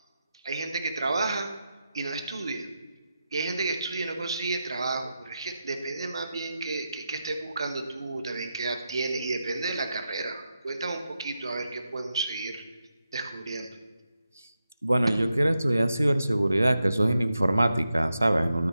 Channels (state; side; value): inverted; both; correlation -0.88